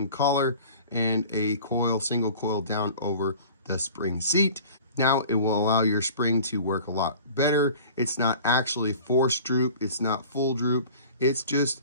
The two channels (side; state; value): both; inverted; correlation -0.44